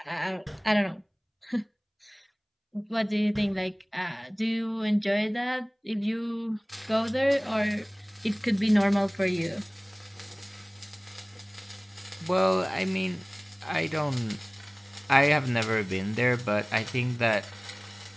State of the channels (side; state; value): both; identical; correlation 1.00